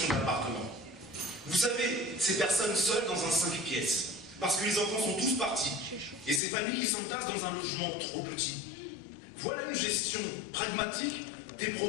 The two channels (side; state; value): right; drops out; at 6.4 s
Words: d'appartement. Vous savez, ces personnes seules dans un 5 pièces, parce que les enfants sont tous partis, et ces familles qui s'entassent dans un logement trop petit. Voilà une gestion pragmatique des